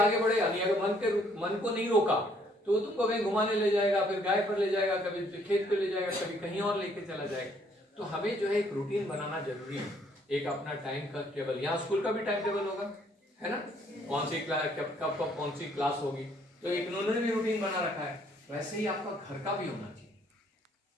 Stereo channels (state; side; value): normal; both; correlation 0.65